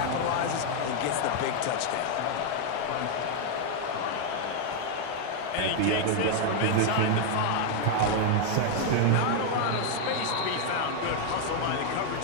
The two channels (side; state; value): both; different; correlation 0.00